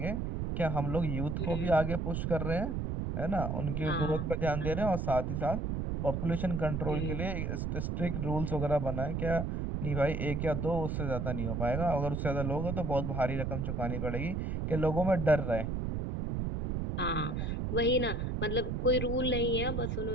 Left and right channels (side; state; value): right; noise; rumble, 1 dB below the sound